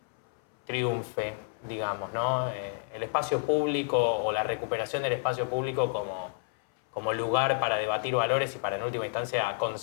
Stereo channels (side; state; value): right; silent; 58 dB below the other